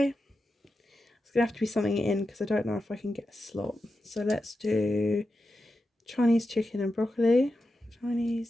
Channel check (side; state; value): both; normal; correlation 0.90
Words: it's gonna have to be something in because I don't know if I can get a slot. So let's do Chinese chicken and broccoli.